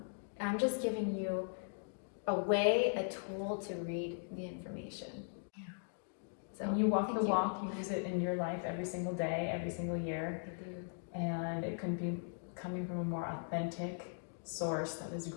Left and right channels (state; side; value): silent; right; digital silence